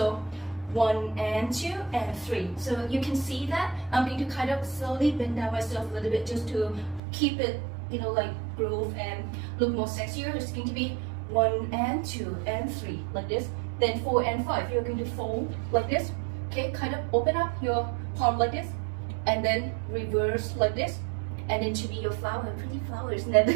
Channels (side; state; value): left; drops out; at 7.0 s